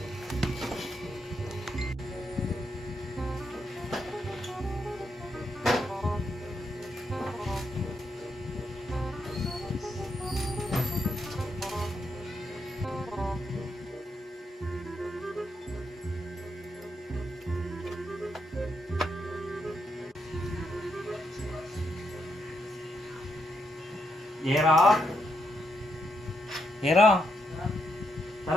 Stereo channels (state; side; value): normal; both; correlation 0.80